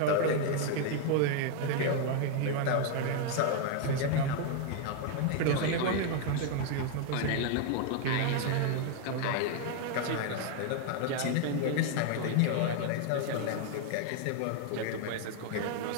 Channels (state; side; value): different; both; correlation 0.00